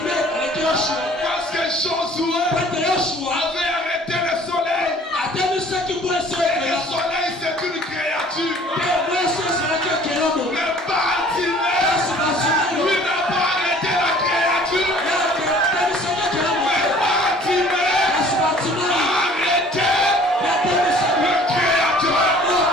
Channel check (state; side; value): normal; both; correlation 0.52